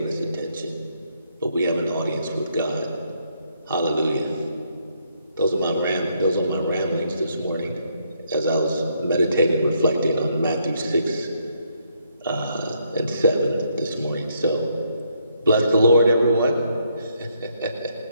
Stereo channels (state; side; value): inverted; both; correlation -0.73